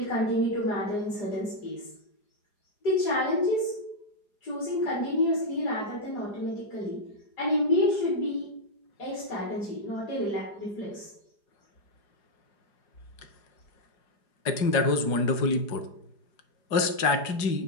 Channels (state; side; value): late; right; 4.9 ms